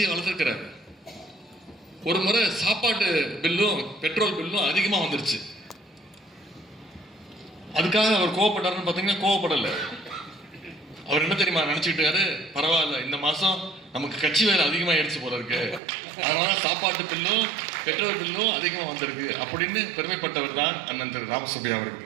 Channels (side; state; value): left; drops out; at 15.8 s